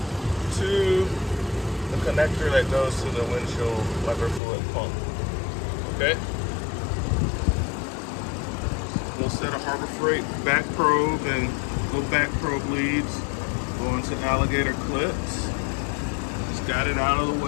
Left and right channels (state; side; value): drops out; right; at 4.4 s